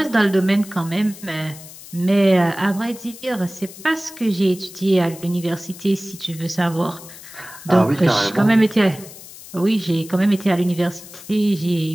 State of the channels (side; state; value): left; noise; hiss, 17 dB below the sound